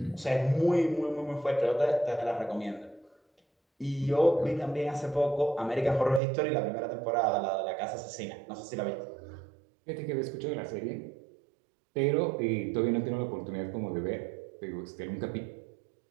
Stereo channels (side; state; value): left; drops out; at 6.2 s